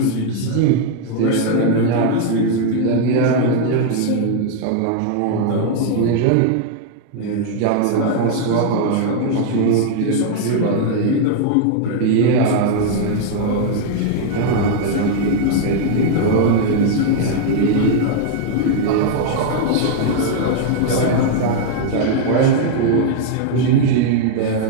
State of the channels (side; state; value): both; different; correlation 0.00